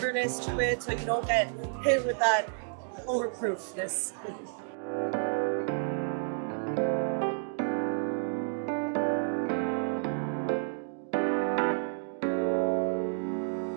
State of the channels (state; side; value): silent; left; digital silence